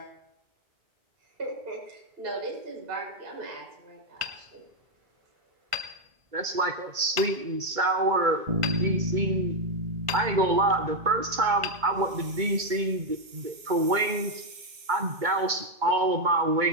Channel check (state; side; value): late; left; 2.2 ms